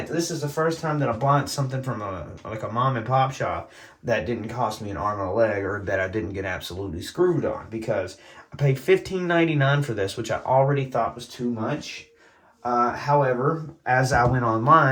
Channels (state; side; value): identical; both; correlation 1.00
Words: this is the first time that I bought something from a mom and pop shop that didn't cost me an arm and a leg, or that I didn't get absolutely screwed on, because I paid $15.99 for this, which I already thought was too much. However, as I went